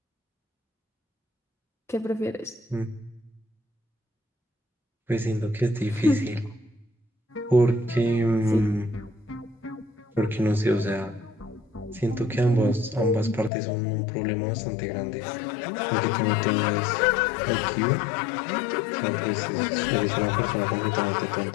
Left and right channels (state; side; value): drops out; right; at 13.5 s